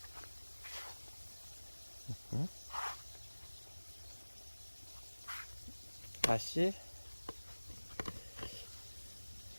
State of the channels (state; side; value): inverted; both; correlation -1.00